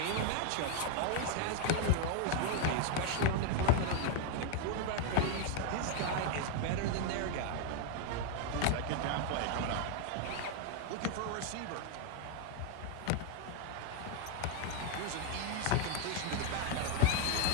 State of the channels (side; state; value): both; different; correlation 0.00